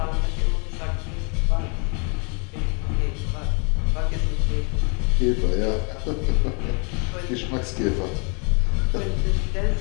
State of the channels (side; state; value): right; quieter; 36.1 dB